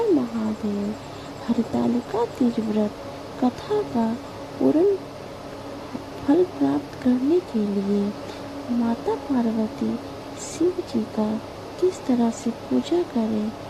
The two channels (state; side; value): identical; both; correlation 1.00